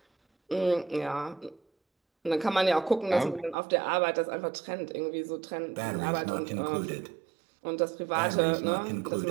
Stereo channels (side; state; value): left; drops out; at 3.6 s